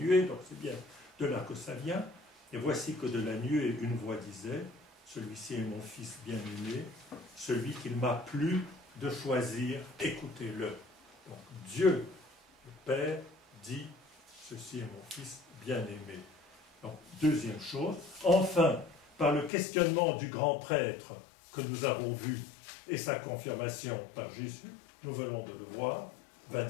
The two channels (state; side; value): drops out; right; at 19.5 s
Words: donc c'est bien de là que ça vient, et voici que de la nuée, une voix disait, celui-ci est mon fils bien-aimé, celui qu'il m'a plu de choisir, écoutez-le. Donc Dieu, le Père, dit, ceci est mon fils bien-aimé. Donc, deuxième chose. Enfin, par le questionnement du grand prêtre que nous avons vu et sa confirmation par Jésus, nous venons de le voir,